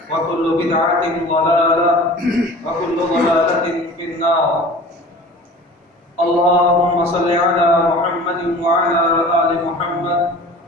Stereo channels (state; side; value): normal; both; correlation 0.41